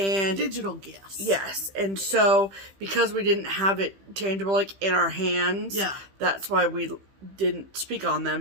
digital gifts. Yes. And so, because we didn't have it tangible, like, in our hands, that's why we didn't speak on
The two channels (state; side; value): late; left; 15 ms